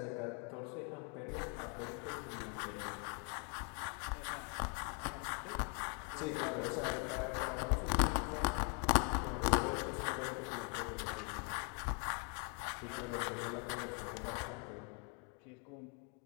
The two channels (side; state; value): right; quieter; 37.4 dB